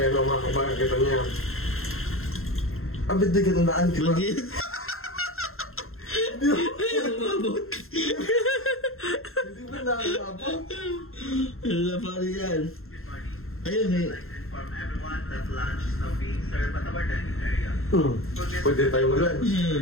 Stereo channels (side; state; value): right; late; 0.62 ms